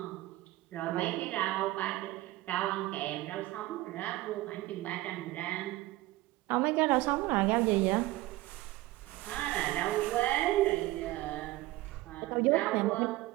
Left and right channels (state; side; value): quieter; left; 17.9 dB